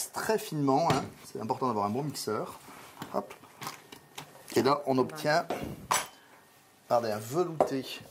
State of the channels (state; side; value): identical; both; correlation 1.00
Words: très finement. Hein. C'est important d'avoir un bon mixeur. Hop. Et là, on obtient regardez, un velouté